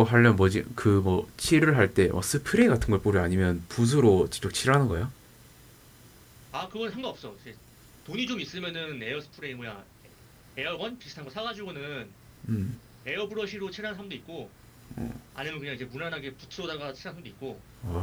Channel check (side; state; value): both; identical; correlation 1.00